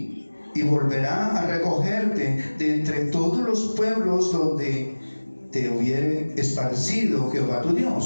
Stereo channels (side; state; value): both; inverted; correlation -1.00